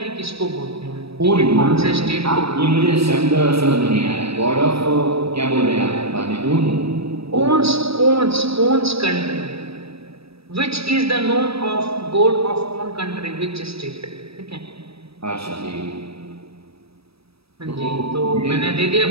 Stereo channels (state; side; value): late; left; 0.77 ms